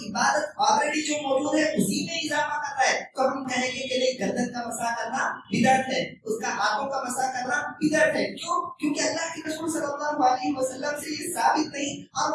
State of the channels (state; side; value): identical; both; correlation 1.00